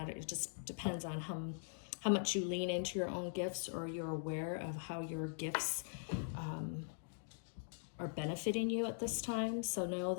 It just depends on how much you lean into your own gifts, or you're aware of how your gifts are benefiting you at this time. So know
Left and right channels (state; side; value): silent; right; digital silence